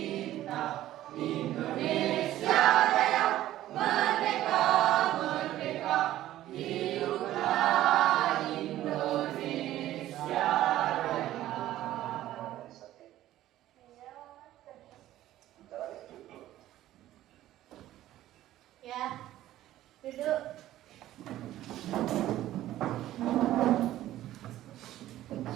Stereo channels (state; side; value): quieter; left; 14.0 dB